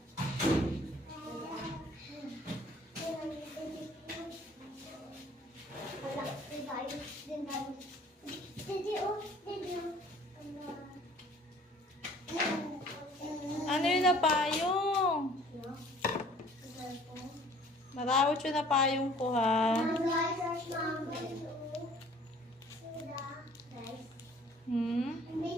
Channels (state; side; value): normal; both; correlation 0.53